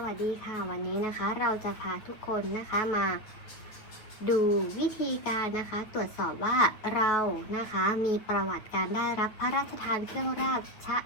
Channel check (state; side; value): late; right; 9.0 ms